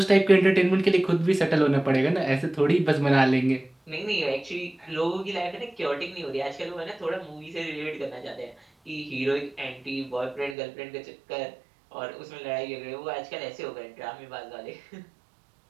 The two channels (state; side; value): drops out; left; at 10.6 s